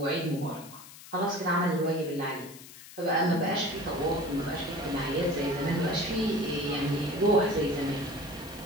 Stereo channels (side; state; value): left; noise; hiss, 17 dB below the sound